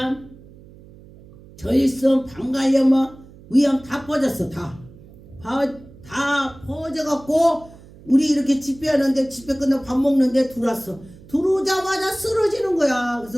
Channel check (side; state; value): right; noise; hum, 22 dB below the sound